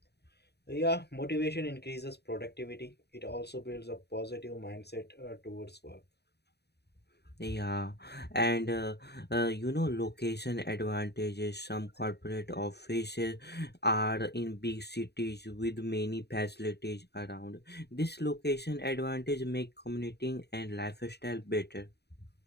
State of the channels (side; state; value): right; late; 0.48 ms